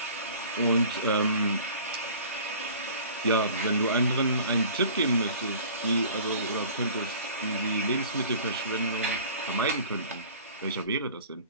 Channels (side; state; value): both; inverted; correlation -0.46